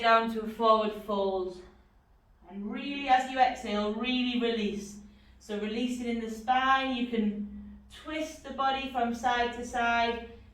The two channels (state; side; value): identical; both; correlation 1.00